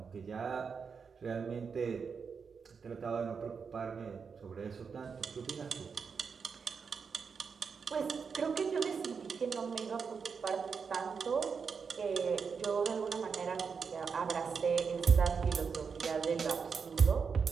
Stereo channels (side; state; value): left; quieter; 5.8 dB